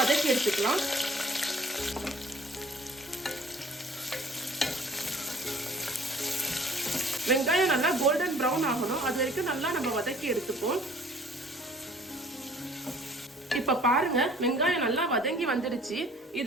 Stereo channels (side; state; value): both; normal; correlation 0.53